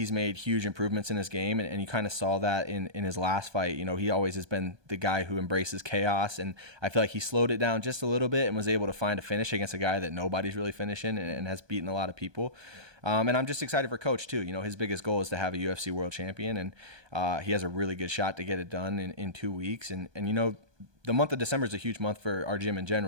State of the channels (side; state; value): left; late; 1.2 ms